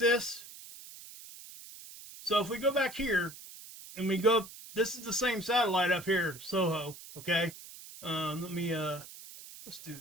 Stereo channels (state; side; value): noise; right; hiss, 16 dB below the sound